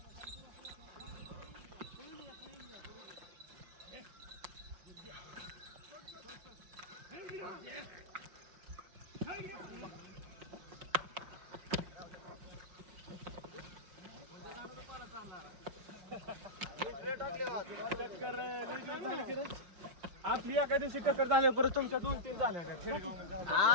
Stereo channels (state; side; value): late; left; 5.5 ms